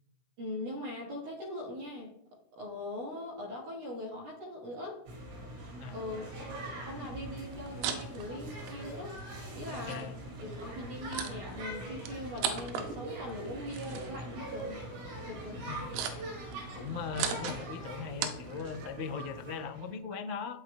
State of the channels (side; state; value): left; late; 17 ms